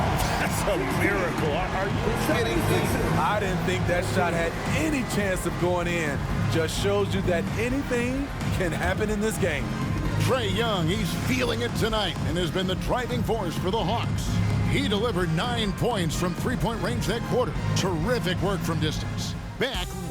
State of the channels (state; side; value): identical; both; correlation 1.00